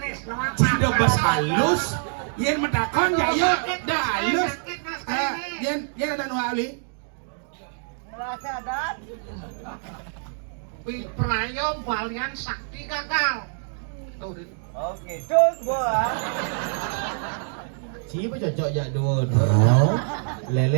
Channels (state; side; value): silent; left; 62 dB below the other